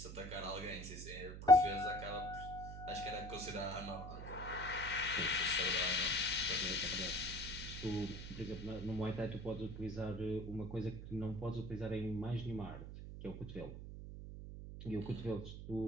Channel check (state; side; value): noise; right; hum, 9 dB below the sound